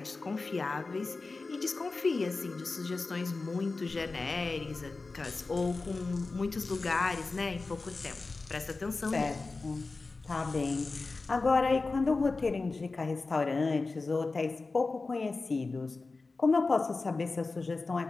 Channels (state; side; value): quieter; right; 3.8 dB